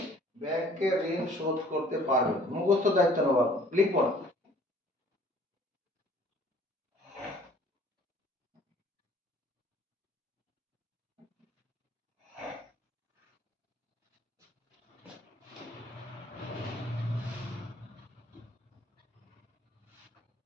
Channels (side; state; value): both; normal; correlation 0.54